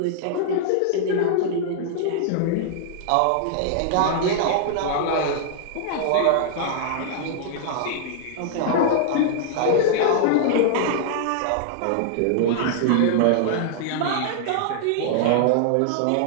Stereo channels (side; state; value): both; different; correlation -0.01